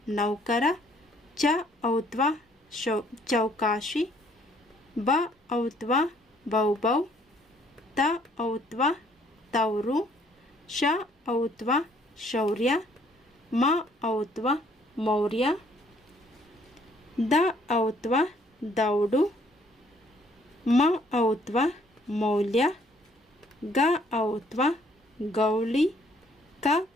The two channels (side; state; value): both; normal; correlation 0.63